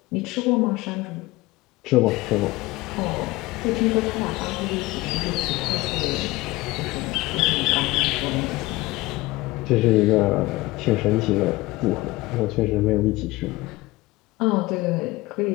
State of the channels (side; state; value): right; quieter; 20.1 dB